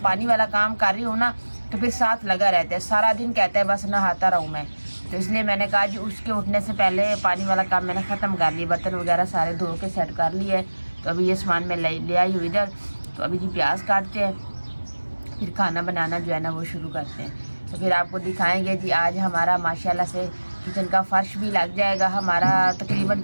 पानी वाला काम कर रही हूँ ना तो फिर साथ लगा रहता है, सारा दिन कहता है बस नहाता रहूँ मैं। तो इसलिए मैंने कहा जी उसके उठने से पहले पानी वाला काम मैंने ख़त्म कर लिया, बर्तन वगैरह सारे धो के सेट कर लिए है। तो अभी ये सामान मैं ले आई हूँ इधर। तो अभी जी प्याज काटते हैं, फिर खाना बनाना जो है ना वो शुरू करते हैं। तो फिर आपको दिखाएंगे जी आज हमारा माशाल्लाह से किचन का फर्श भी लग जाएगा। हमारा तकरीबन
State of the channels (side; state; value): both; inverted; correlation -1.00